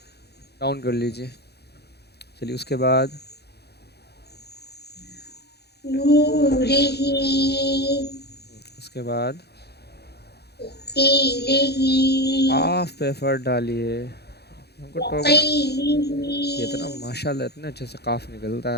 ڈاؤن کر لیجئے. چلیے اس کے بعد نورہ اس کے بعد قیلہ قاف پہ ایفرٹ ڈالیے. ہم کو ٹوکنا, یہ اتنا وقیلہ ماشاءاللہ اتنے اچھے سے قاف نکلتا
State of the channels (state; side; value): late; right; 0.48 ms